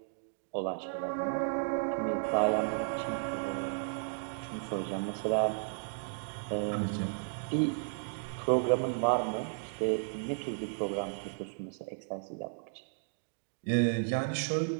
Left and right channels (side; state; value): left; silent; digital silence